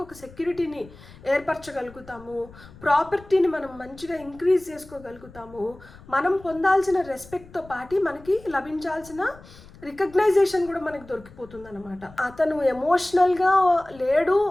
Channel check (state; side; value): noise; left; rumble, 21 dB below the sound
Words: ఒక సెక్యూరిటీని ఏర్పరచగలుగుతాము, ప్రాపర్టీని మనం మంచిగా ఇంక్రీజ్ చేసుకోగలుగుతాము, మనం పొందాల్సిన రెస్పెక్ట్తో పాటు మనకి లభించాల్సిన రికగ్నైజేషన్ కూడా మనకు దొరికిపోతుంది అనమాట. అతను ఎమోషనల్గా లేడు